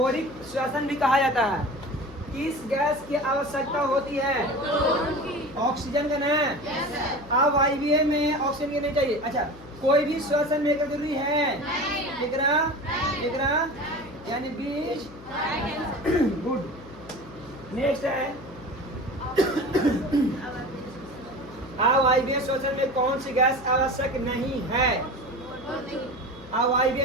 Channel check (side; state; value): left; noise; hum, 19 dB below the sound